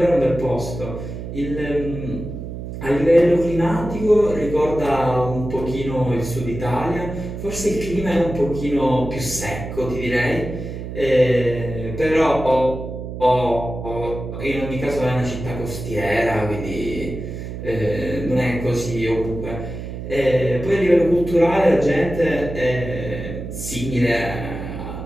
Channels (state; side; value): noise; right; hum, 8 dB below the sound